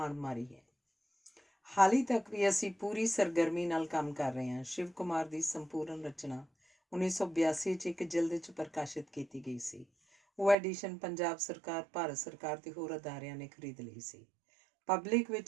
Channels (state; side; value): drops out; left; at 10.6 s